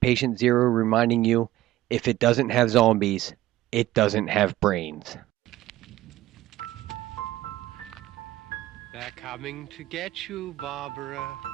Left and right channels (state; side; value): quieter; left; 15.4 dB